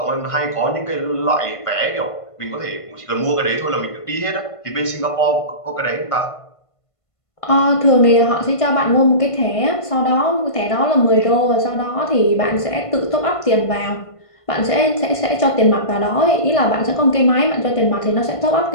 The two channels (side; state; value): right; late; 1.5 ms